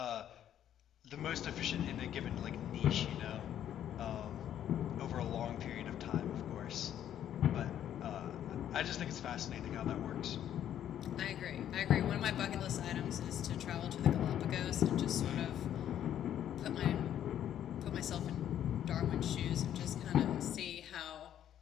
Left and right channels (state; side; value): quieter; right; 10.6 dB